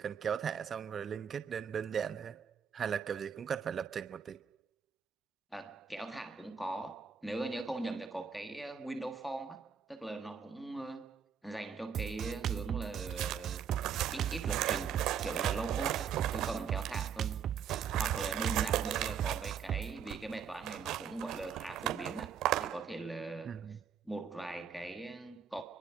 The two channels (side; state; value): left; quieter; 7.3 dB